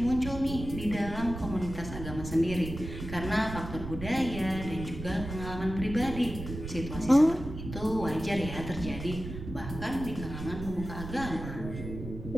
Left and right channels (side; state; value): right; noise; rumble, 9 dB below the sound